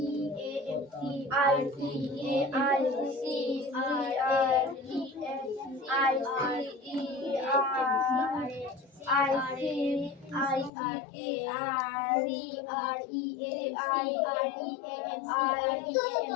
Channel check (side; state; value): right; drops out; at 10.7 s